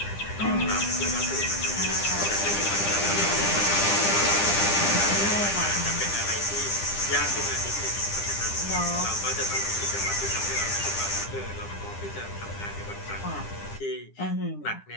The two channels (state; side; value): late; right; 10 ms